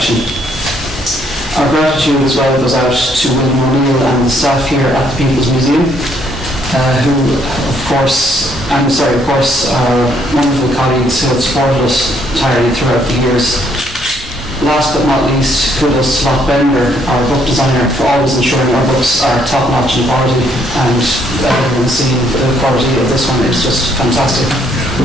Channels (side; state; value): both; normal; correlation 0.68